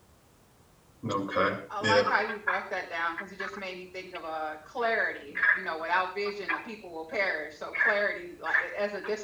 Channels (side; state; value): both; identical; correlation 1.00